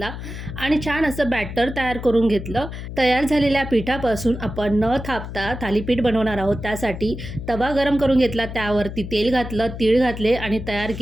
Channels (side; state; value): left; noise; hum, 9 dB below the sound